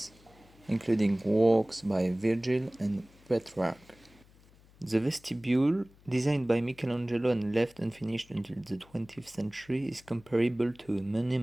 including works by Virgil and Petrarch. The vestibule, designed by Michelangelo and left unfinished until the 20th century, is comparable to a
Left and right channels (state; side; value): noise; left; hum, 27 dB below the sound